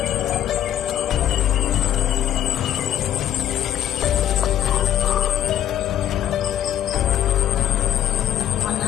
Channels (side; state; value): right; quieter; 11.0 dB